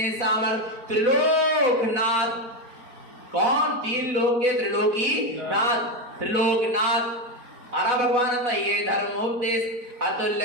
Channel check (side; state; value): left; late; 4.4 ms